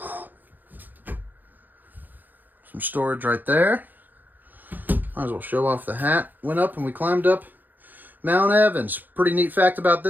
Some storage right there. Might as well show off the hat. Went up and we climbed up Mount Evans. Pretty neat fact about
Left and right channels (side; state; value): left; late; 0.086 ms